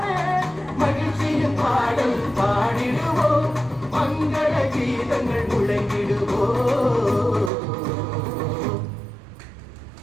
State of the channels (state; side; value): drops out; left; at 7.5 s